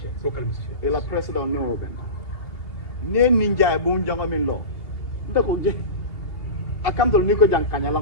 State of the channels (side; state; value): right; late; 2.8 ms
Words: Local musicians. Ela president no oben. Ne ninja e bon janga min lo. Ndako je. Akam tol niko jang